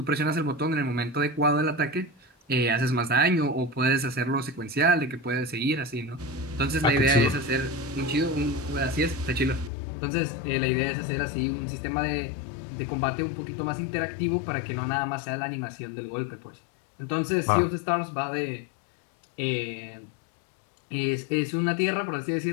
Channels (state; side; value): drops out; right; at 9.7 s